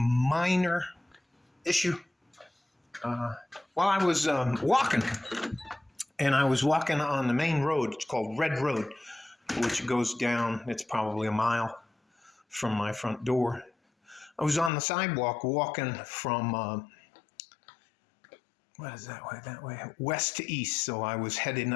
issue. While I was walking, and I was walking on the main road, it's called Red Road, which goes down, it's probably a mile from my front door. I was on the sidewalk walking from, what is that way? That way, west to east. So I was heading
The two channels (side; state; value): right; drops out; at 14.7 s